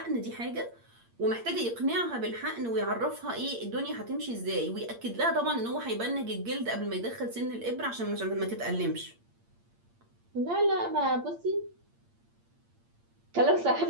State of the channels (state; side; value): late; left; 8.7 ms